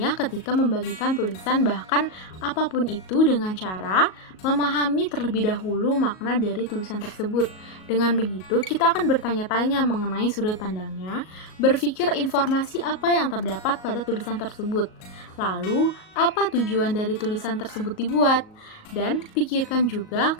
ketika membagikan tulisan bahkan apapun itu dengan cara memahami terlebih dahulu makna dari tulisan tersebut. Dengan begitu, kita akan bertanya-tanya mengenai sudut pandangnya, berpikir informasi apa yang terdapat pada tulisan tersebut. Lalu, apa tujuan dari tulisan tersebut dibuat? Dan pikirkan juga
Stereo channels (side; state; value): right; late; 38 ms